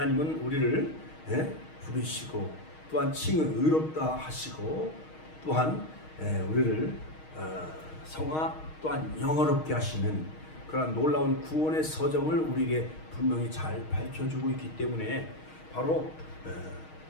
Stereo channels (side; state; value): right; late; 6.4 ms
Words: 우리를 부르시고 또한 칭을 의롭다 하시고, 또한 우리를 성화 또한 영어롭게 하시는 그런 놀라운 구원의 서정을 우리에게 분명히 잘 밝혀주고 있기 때문에 바로